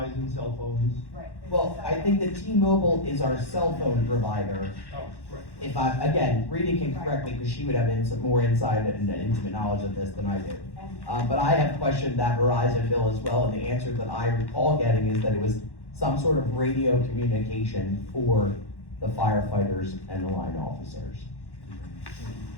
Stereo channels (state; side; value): late; right; 1.1 ms